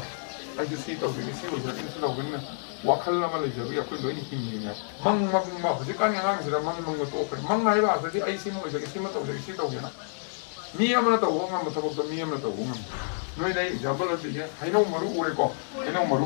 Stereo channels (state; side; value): silent; right; digital silence